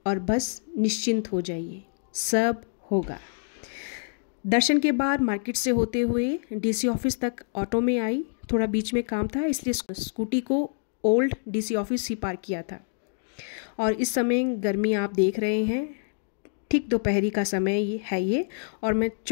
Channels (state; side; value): silent; right; digital silence